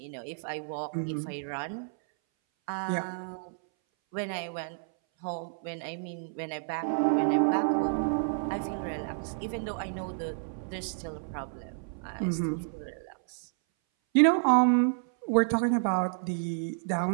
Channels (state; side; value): silent; left; 58 dB below the other